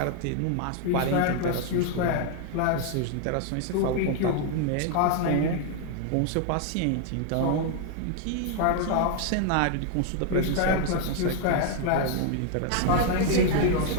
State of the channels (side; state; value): both; different; correlation 0.00